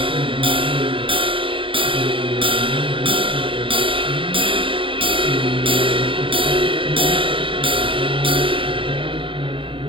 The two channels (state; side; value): late; left; 0.25 ms